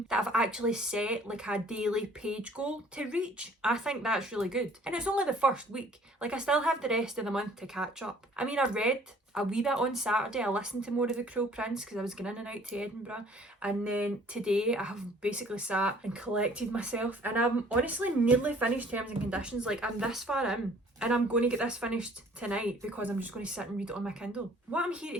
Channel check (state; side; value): normal; both; correlation 0.55